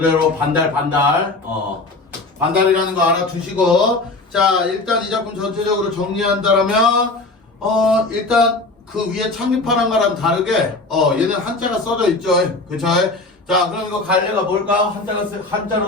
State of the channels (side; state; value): right; quieter; 3.2 dB